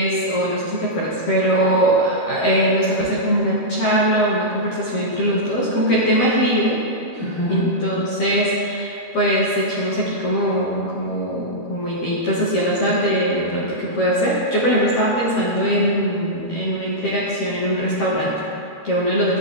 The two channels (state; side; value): late; right; 13 ms